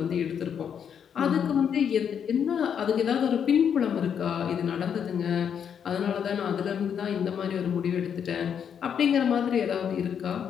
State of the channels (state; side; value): quieter; right; 7.9 dB